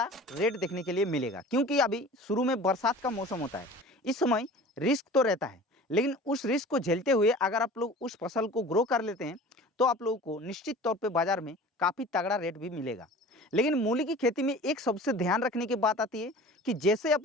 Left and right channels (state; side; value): normal; both; correlation 0.41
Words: रेट देखने के लिए मिलेगा, क्योंकि अभी शुरू में बरसात का मौसम होता है। इस समय रिस्क तो रहता है, लेकिन उस रिस्क को झेलते हुए अगर आप लोग उस फसल को ग्रो कर लेते हैं तो आप लोगों को निश्चित तौर पे बाजार में काफ़ी तगड़ा रेट भी मिलेगा। लेकिन मूली की खेती में एक सबसे ध्यान रखने की बात आती है कि जैसे